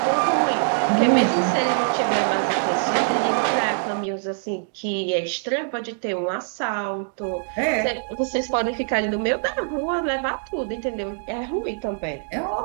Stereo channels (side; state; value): left; silent; digital silence